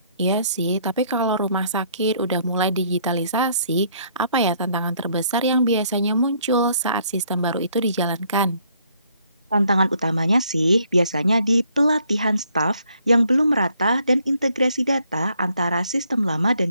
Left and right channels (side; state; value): both; inverted; correlation -0.66